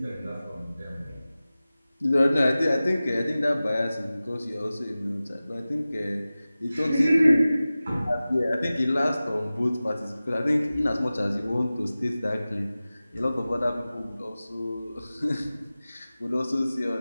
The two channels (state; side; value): inverted; both; correlation -0.97